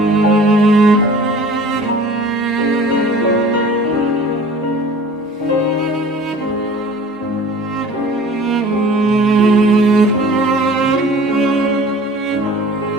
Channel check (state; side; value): normal; both; correlation 0.45